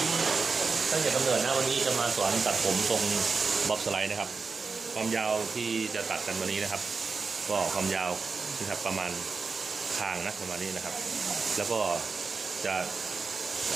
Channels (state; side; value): quieter; left; 4.6 dB